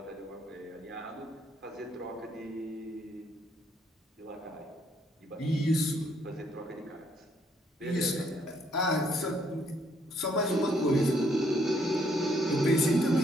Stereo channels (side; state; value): both; normal; correlation 0.69